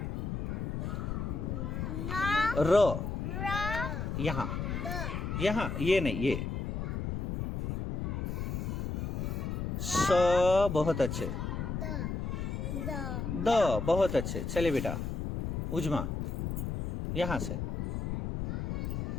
र यहाँ ये नहीं ये। स बहुत अच्छे। द बहुत अच्छे। चलिए बेटा उजमा यहाँ से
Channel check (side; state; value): left; noise; rumble, 3 dB below the sound